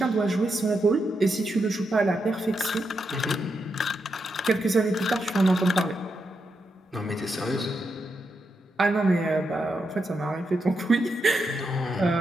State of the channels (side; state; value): both; normal; correlation 0.84